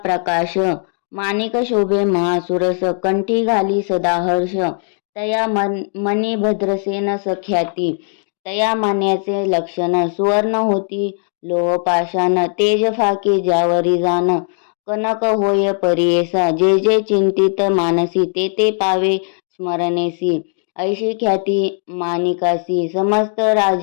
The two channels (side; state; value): right; silent; 59 dB below the other